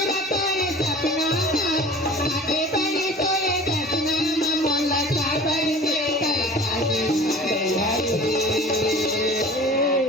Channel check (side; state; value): both; normal; correlation 0.42